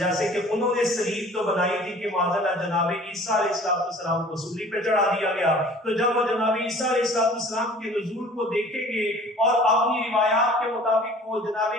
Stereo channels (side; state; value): both; normal; correlation 0.48